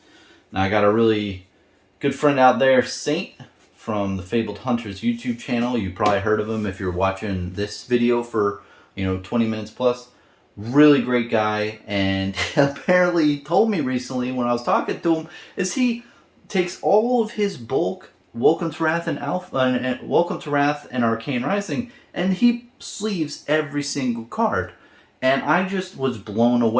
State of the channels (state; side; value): identical; both; correlation 1.00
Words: Now I got a really good friend out there, Saint, from the Fabled Hunters YouTube channel. You probably heard of him if you're watching this video for 20 minutes plus. Really great guy, and apparently told me recently when I was talking to him is he takes all of his bulk Welcome to Wrath and Alpha and Welcome to Wrath and Arcane Rising, and he sleeves every single card. And I just was blown